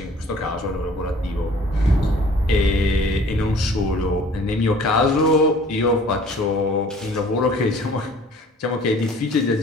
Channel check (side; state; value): both; normal; correlation 0.51